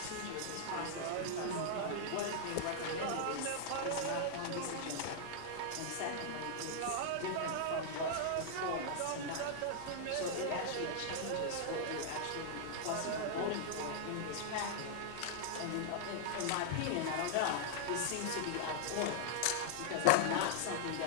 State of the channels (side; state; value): both; different; correlation -0.01